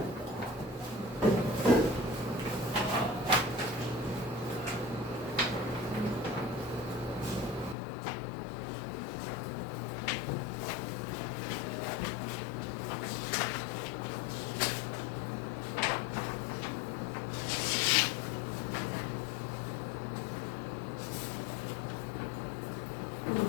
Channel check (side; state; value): right; drops out; at 7.8 s